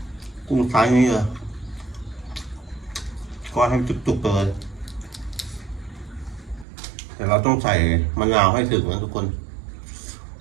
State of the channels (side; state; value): left; drops out; at 6.7 s